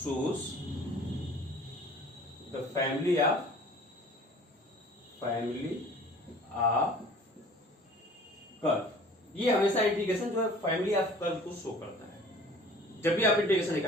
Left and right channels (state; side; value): normal; both; correlation 0.48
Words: the family of curve. ये हमेशा इंटीग्रेशन जो है फैमिली ऑफ कर्व को शो करता है। जब भी आप इंटीग्रेशन